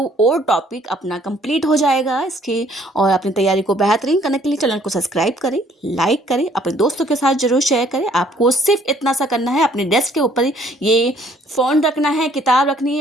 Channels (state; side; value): normal; both; correlation 0.61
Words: टॉपिक अपना कंप्लीट हो जाएगा इसके। और अपनी तैयारी को बेहतरीन करने के लिए चैनल को सब्सक्राइब करें, लाइक करें, अपने दोस्तों के साथ जरूर शेयर करें। आपको सिर्फ इतना सा करना है, अपने डेस्क के ऊपर ये फ़ोन रखना है, किताब रखनी